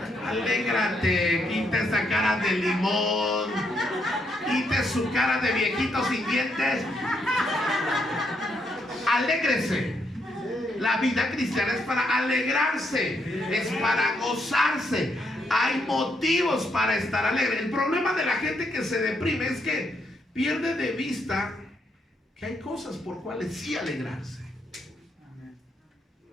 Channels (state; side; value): normal; both; correlation 0.77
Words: Alégrate. Quita esa cara de limón. Quite su cara de viejito sin dientes. Alégrese. La vida cristiana es para alegrarse. Es para gozarse. Hay motivos para estar alegre. El problema de la gente que se deprime es que pierde de vista que hay cosas por cuales sí alegrarse.